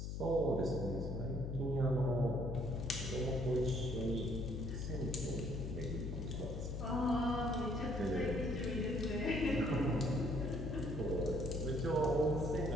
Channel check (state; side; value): noise; left; hum, 4 dB below the sound